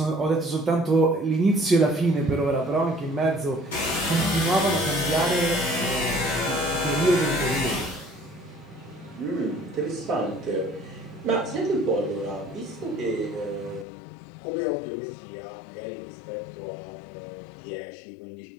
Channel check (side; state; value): right; drops out; at 13.9 s